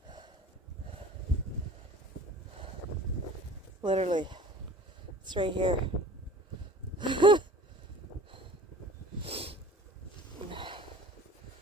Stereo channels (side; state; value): both; normal; correlation 0.43